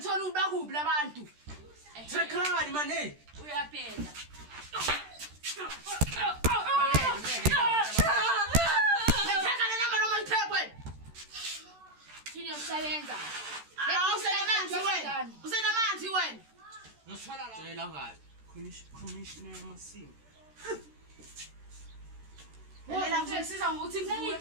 ukuba kuphi labantu. Trekani man hey. Uyaphela. Ngithetha le number noma ngithekwe. Thini yokusebenza. Usenamanzi wena. Ngifala la. Tshela ngayo. Commissioner Masimo. Lela ngisiza ngokuthi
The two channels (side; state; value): left; late; 13 ms